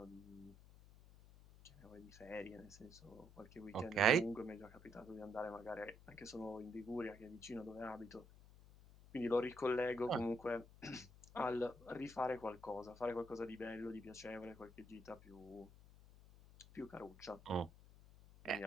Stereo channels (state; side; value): noise; left; hum, 20 dB below the sound